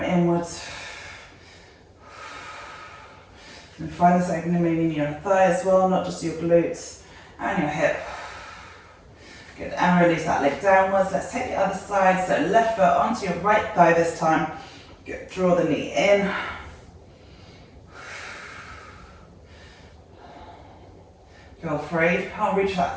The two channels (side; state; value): both; identical; correlation 1.00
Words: inwards. And find this opening maybe in your thigh as well, not just your glutes and your hip. Good, and release that leg downwards. Let's take the other side. So left foot onto your right thigh this time. Good, draw the knee in. Feel free. If you can't reach